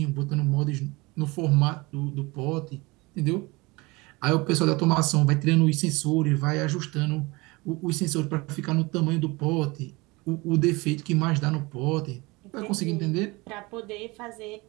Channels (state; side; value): quieter; left; 24.0 dB